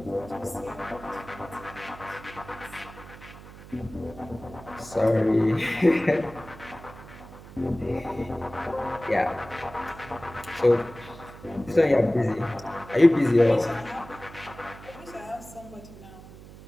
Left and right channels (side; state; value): right; noise; hum, 17 dB below the sound